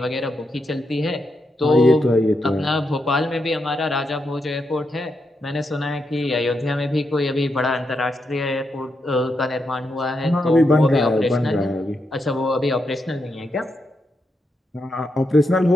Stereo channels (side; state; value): both; normal; correlation 0.83